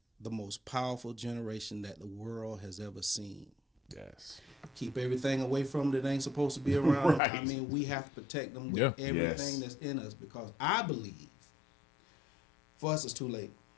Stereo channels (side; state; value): right; drops out; at 7.2 s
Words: the most powerful generation that the world has ever seen. Yes. Keep everything away from them that ain't supposed to be around. Right. I mean, we have to protect them with Yeah. everything Yes. that's in us, because I believe for us it's too late.